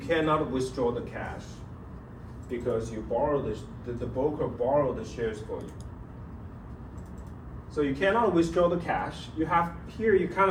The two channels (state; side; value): identical; both; correlation 1.00